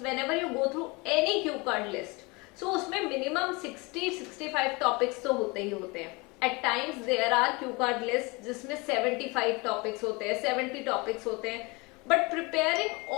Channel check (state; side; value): quieter; right; 26.5 dB